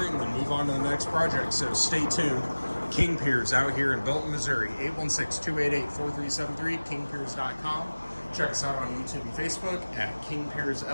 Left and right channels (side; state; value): both; inverted; correlation -1.00